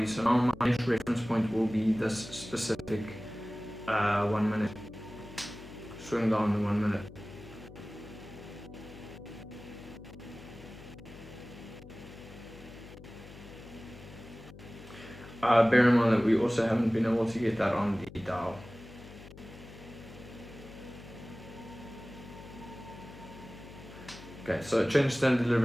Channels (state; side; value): noise; left; hum, 17 dB below the sound